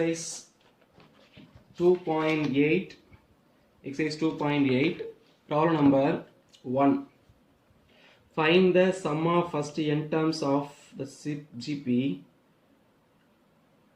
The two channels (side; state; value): both; identical; correlation 1.00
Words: 2.8. Exercise 2.8. Problem number 1. Find the sum of first n terms of the GP.